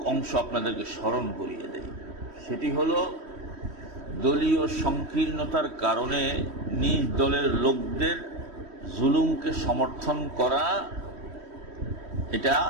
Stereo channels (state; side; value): late; left; 3.1 ms